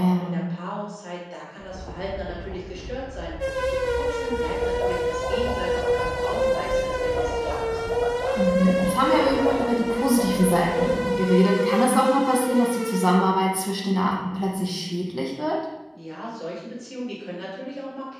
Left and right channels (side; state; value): both; identical; correlation 1.00